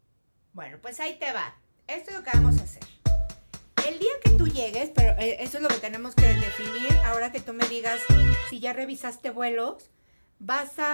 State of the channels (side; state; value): both; inverted; correlation -1.00